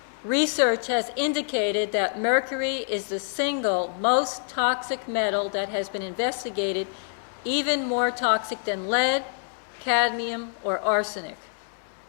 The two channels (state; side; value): silent; right; digital silence